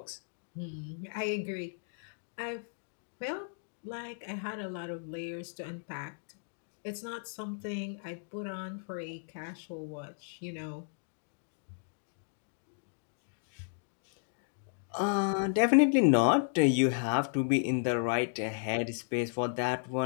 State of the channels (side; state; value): right; silent; digital silence